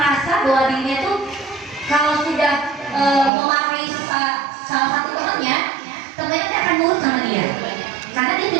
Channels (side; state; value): left; drops out; at 3.3 s